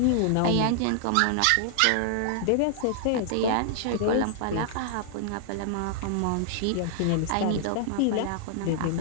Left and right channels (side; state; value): both; different; correlation -0.01